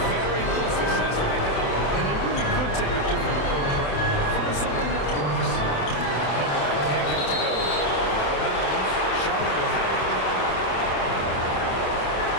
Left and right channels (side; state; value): right; late; 27 ms